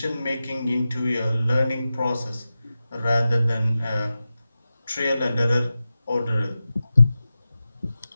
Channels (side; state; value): both; inverted; correlation -0.93